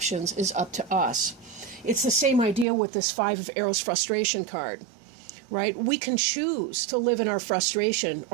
is up to us. It's the same idea with this Five of Arrows frustration card. Right? We can choose to live in our frustration,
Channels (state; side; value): drops out; left; at 2.7 s